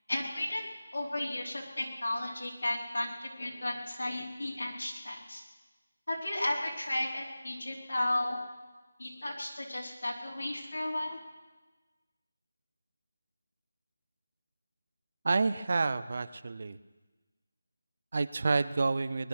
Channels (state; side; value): inverted; both; correlation -0.95